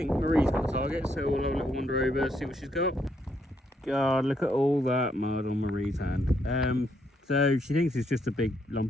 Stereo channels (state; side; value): normal; both; correlation 0.75